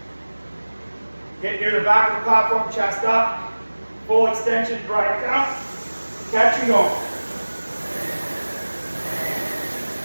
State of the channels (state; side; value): inverted; both; correlation -1.00